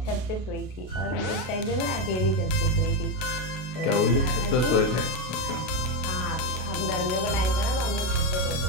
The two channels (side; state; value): right; late; 32 ms